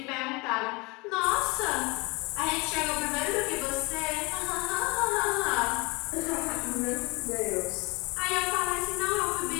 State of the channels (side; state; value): right; quieter; 26.0 dB